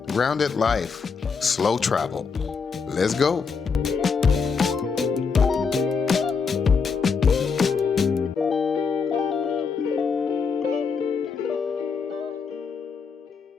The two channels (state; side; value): quieter; right; 5.4 dB